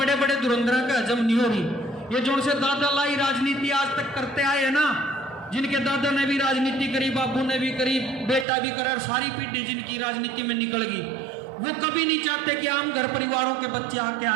बड़े धुरंधरों का हजम नहीं हो रही। ये जो उनसे दादा लाई राजनीति आज तक करते आए हैं ना, जिनके दादा ने भी राजनीति करी, बाबू ने भी करी, बेटा भी करा, सारी पीढ़ी जिनकी राजनीति में निकल गई, वो कभी नहीं चाहते कि आम घर परिवारों के बच्चे आगे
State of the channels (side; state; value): left; drops out; at 8.5 s